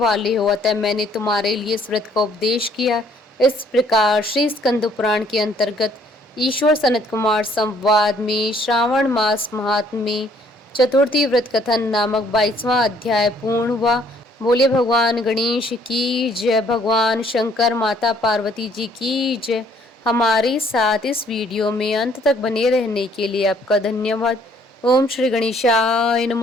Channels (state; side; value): normal; both; correlation 0.62